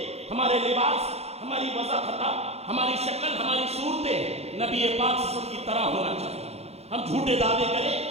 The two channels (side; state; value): left; late; 0.30 ms